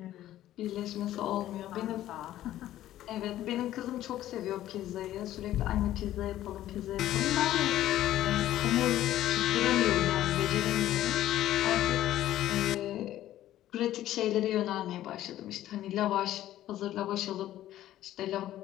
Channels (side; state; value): right; quieter; 13.4 dB